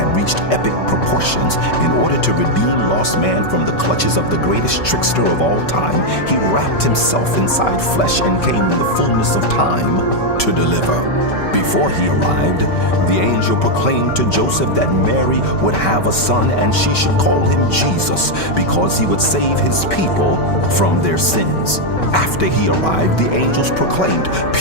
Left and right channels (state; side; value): late; right; 5.2 ms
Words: reached epic proportions, in order to redeem lost man from the clutches of the greatest trickster of all time, he wrapped himself inside flesh and came in the fullness of time to deliver. Before he arrived, the angel proclaimed to Joseph that Mary would have a son and she should call him Jesus because he would save his people from their sins. After he arrived, the angels proclaimed